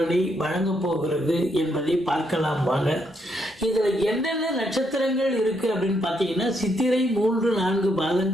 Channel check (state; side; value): normal; both; correlation 0.76